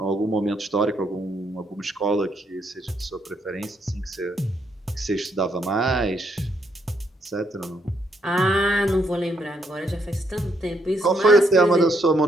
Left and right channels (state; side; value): normal; both; correlation 0.74